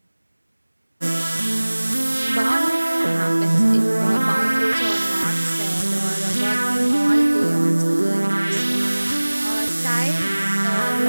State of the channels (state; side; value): inverted; both; correlation -1.00